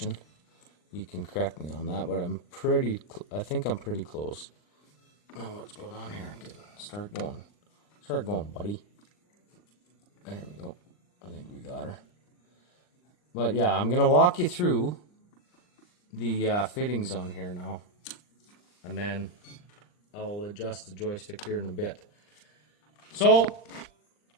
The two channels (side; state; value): right; late; 39 ms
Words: you can correct me on that, but I think I'm pretty close. Now what's going on here? Start going, buddy. There we go. I think we got her. But yeah, I'm gonna walk you through the fittings on here now, and then I'll adjust the joystick here in a bit. So